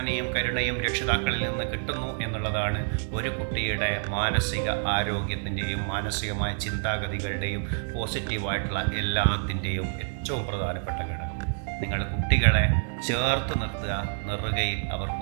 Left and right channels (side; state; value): left; silent; digital silence